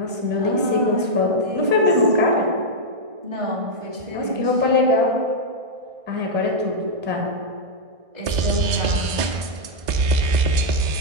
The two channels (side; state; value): left; late; 1.6 ms